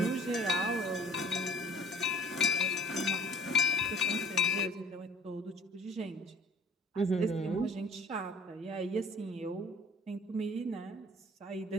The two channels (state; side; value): normal; both; correlation 0.52